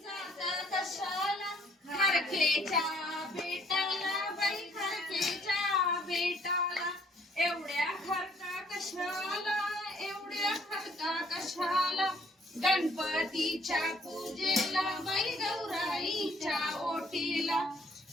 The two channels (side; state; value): both; normal; correlation 0.63